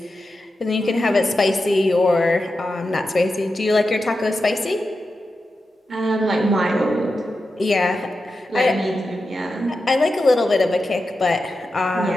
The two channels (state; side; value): normal; both; correlation 0.90